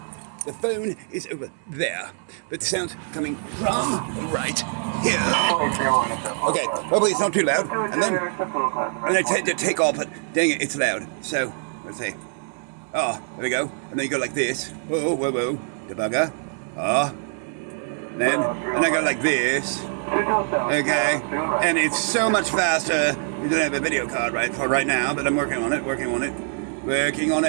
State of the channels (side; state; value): left; silent; 59 dB below the other